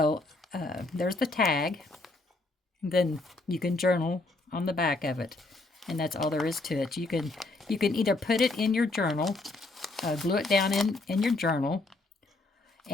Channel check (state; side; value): quieter; right; 3.1 dB